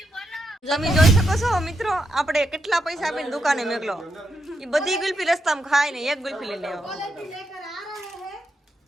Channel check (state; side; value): normal; both; correlation 0.83